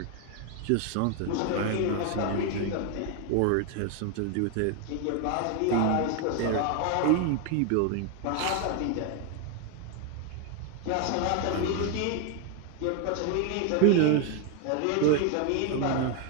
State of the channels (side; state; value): both; different; correlation 0.01